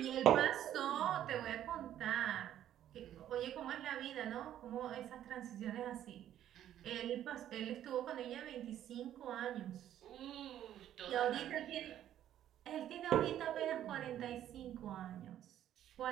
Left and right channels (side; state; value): left; quieter; 11.4 dB